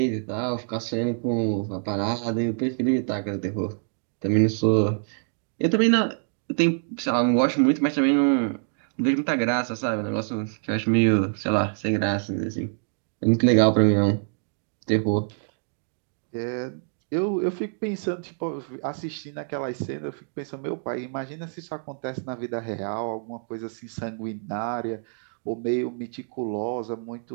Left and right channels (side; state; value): left; silent; digital silence